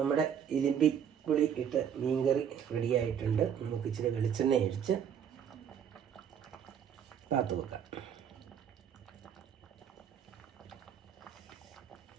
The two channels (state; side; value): quieter; left; 8.4 dB